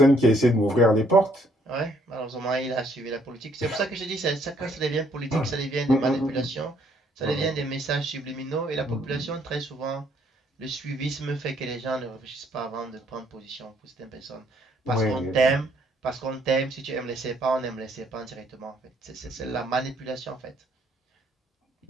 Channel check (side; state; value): both; normal; correlation 0.67